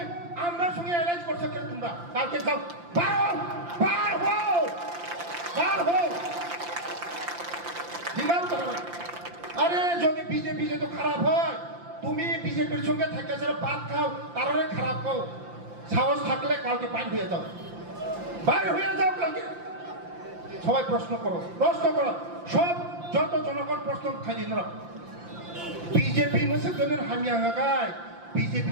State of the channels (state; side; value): late; left; 5.8 ms